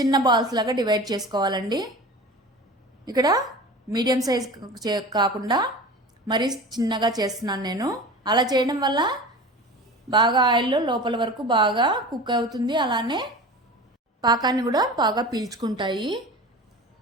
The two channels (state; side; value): normal; both; correlation 0.35